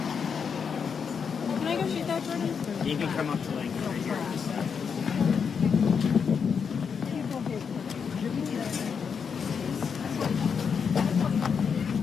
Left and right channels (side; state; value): right; quieter; 6.4 dB